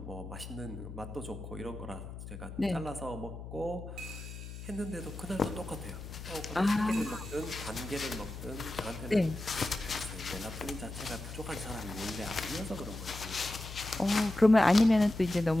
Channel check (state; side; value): noise; left; hum, 10 dB below the sound